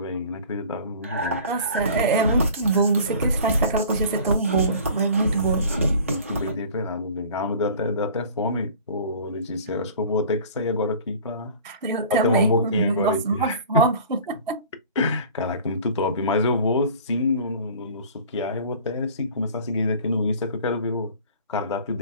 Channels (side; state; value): both; inverted; correlation -0.45